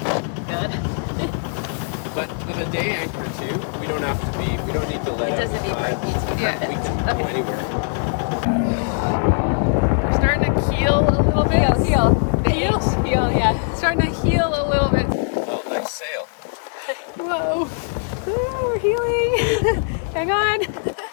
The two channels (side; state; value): right; silent; digital silence